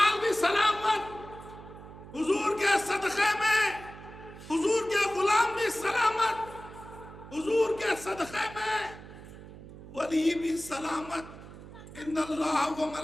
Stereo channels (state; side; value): noise; right; hum, 16 dB below the sound